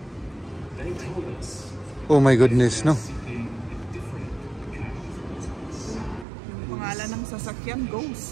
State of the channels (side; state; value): left; drops out; at 6.2 s